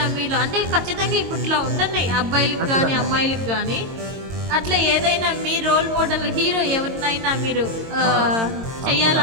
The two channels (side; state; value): left; late; 22 ms